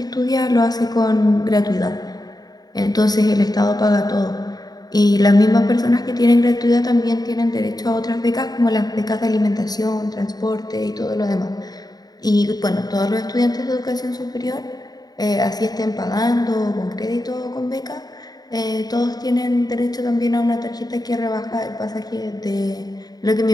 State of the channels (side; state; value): right; late; 0.19 ms